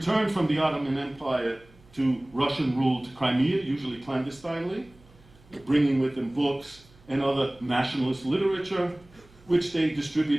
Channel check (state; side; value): noise; right; hum, 27 dB below the sound